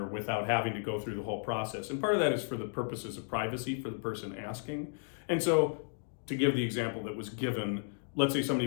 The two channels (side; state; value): right; silent; digital silence